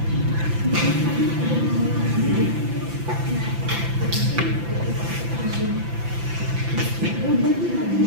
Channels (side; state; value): left; late; 5.9 ms